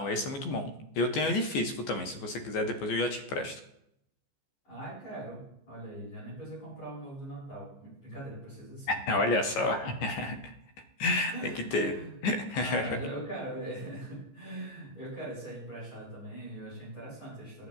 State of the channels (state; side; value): late; right; 14 ms